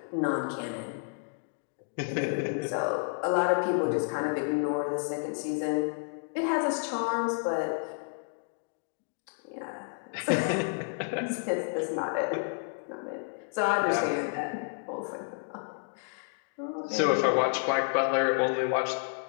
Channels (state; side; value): silent; right; digital silence